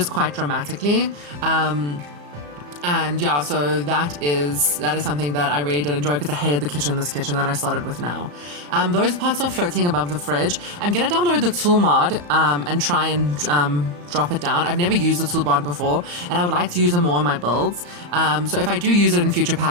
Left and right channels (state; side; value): late; left; 34 ms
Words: quite dramatically. And yeah, so that is something that I really did enjoy because I hated this kitchen that I started with now. Those pots are floating above the fridge. I'm gonna download the tool mod and try and drop it down. I've never used the tool mod before, and I would like to use it more in my builds. So if I do use it in future